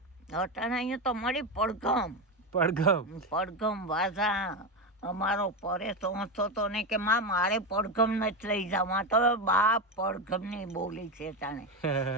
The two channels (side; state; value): both; normal; correlation 0.14